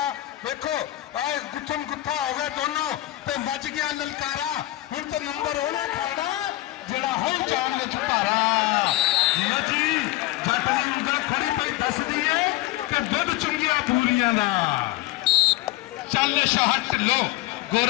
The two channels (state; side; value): quieter; right; 17.2 dB